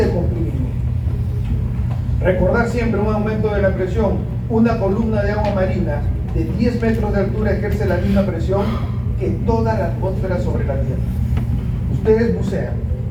comprimido. Recordar siempre un aumento de la presión. Una columna de agua marina de 10 metros de altura ejerce la misma presión que toda la atmósfera sobre la Tierra. Ustedes bucean,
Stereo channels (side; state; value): both; identical; correlation 1.00